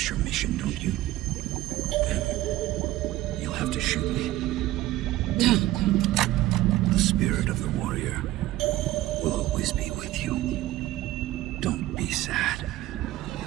your mission, don't you? Then you'll have to shoot me. The spirit of the warrior will always be with you. Don't be sad.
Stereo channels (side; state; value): left; quieter; 15.8 dB